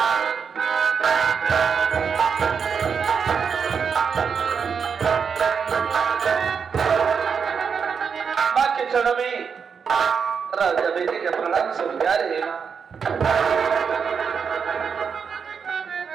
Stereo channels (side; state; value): left; quieter; 6.3 dB